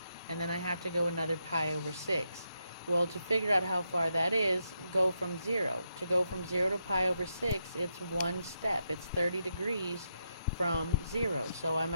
and then I have to go another pi over 6. Well, to figure out how far that is, go from 0. To go from 0 to pi over 6, it's one step. It's 30 degrees from 0. So I'm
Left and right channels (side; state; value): both; inverted; correlation -0.83